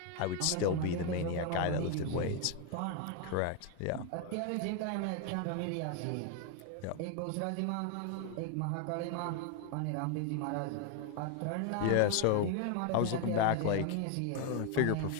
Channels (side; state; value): both; different; correlation 0.01